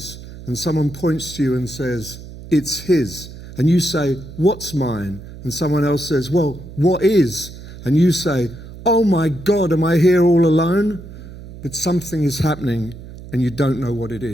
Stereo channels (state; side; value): noise; right; hum, 15 dB below the sound